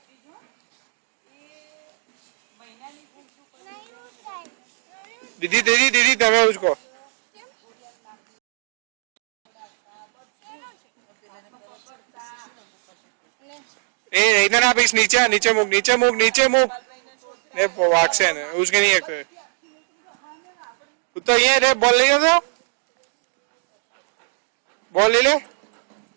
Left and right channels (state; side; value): silent; left; digital silence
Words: दीदी दीदी दीदी તમે उसको ए इधर आप इस नीचे नीचे मुक नीचे मुक नीचे मुक ये वाक्से ने उसके नहीं है तो ये रे बॉल ले जा बॉल ले ले